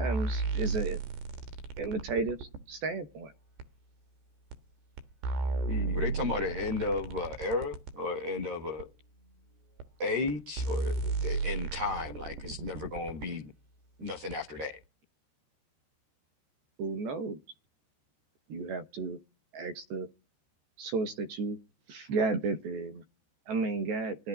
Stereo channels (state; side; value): late; left; 13 ms